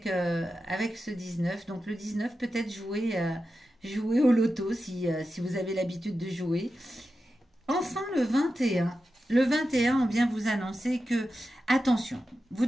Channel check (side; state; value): both; normal; correlation 0.91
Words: ce 19. Donc le 19, peut-être jouer au loto si vous avez l'habitude de jouer. Enfin, le 21. Le 21, on vient vous annoncer que, attention, vous